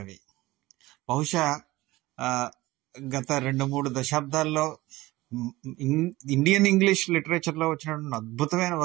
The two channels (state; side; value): quieter; left; 19.0 dB